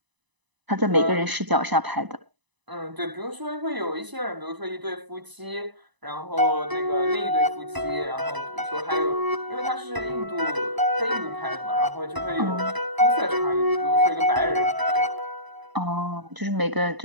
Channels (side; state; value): left; late; 1.0 ms